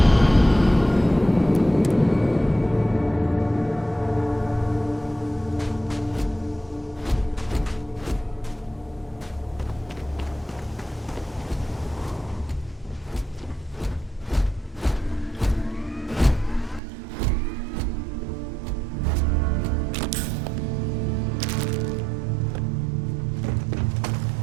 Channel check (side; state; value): left; drops out; at 16.8 s